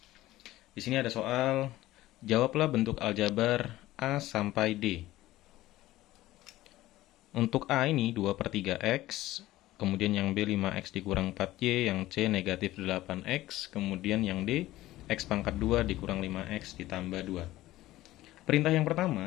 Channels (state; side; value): quieter; right; 16.2 dB